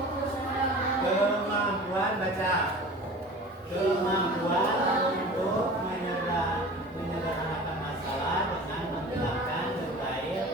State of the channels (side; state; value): both; normal; correlation 0.39